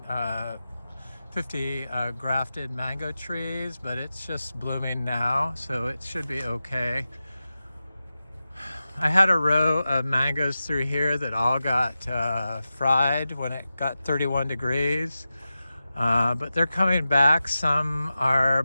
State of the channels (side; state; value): both; inverted; correlation -0.93